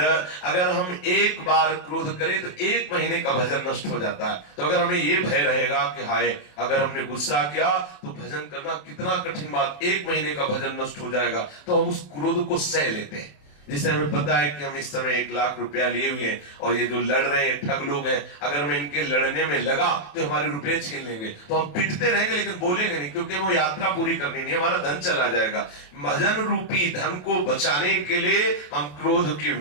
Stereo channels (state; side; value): late; right; 27 ms